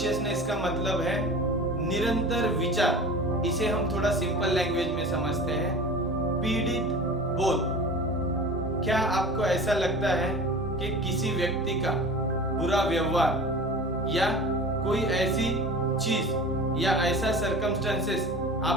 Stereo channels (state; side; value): normal; both; correlation 0.37